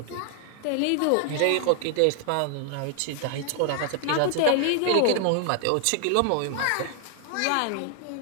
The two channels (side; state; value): both; different; correlation 0.00